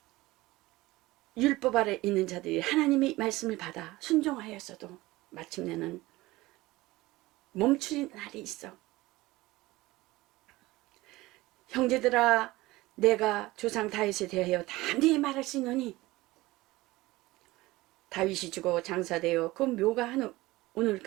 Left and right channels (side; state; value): left; quieter; 19.4 dB